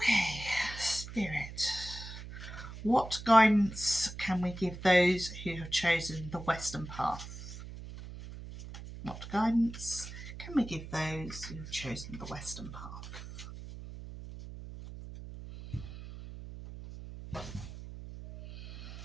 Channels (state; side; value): noise; right; hum, 11 dB below the sound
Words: Spirit, what guidance can we give those who have chosen the Western path? What guidance can we give those who have chosen the Western path?